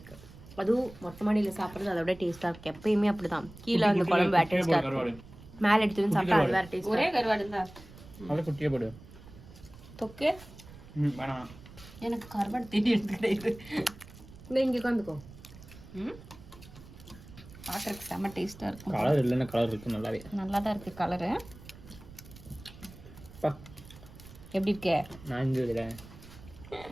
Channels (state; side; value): noise; right; rumble, 18 dB below the sound